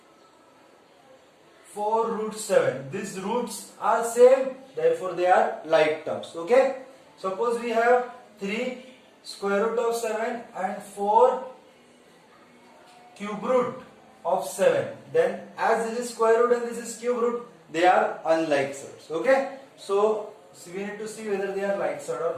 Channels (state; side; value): identical; both; correlation 1.00